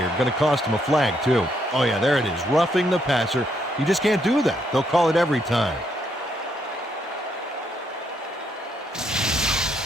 Going to cost him a flag, too. Oh, yeah, there it is. Roughing the passer. You just can't do that. They'll call it every time.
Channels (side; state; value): both; normal; correlation 0.74